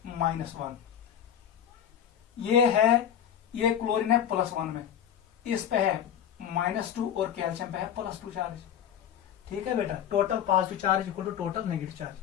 -1, ये क्लोरीन है +1 में, इस पे है -2 और कैल्शियम पे है +2 चार्ज। ठीक है बेटा, total positive charge equal to total negative charge.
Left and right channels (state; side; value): quieter; right; 9.4 dB